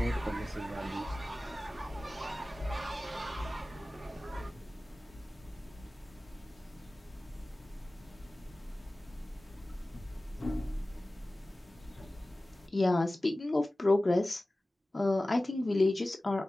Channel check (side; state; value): both; normal; correlation 0.97